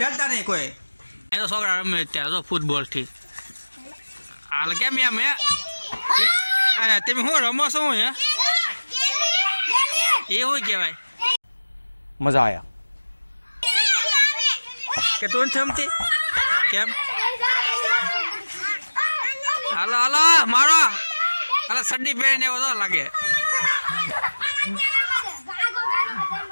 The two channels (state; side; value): inverted; both; correlation -1.00